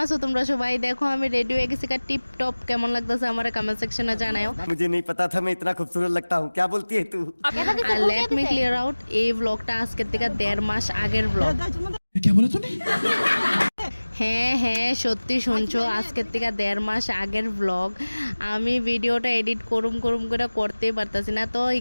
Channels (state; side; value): inverted; both; correlation -1.00